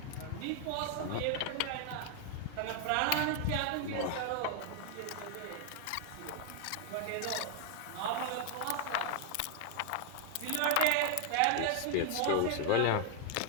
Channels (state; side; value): different; both; correlation 0.00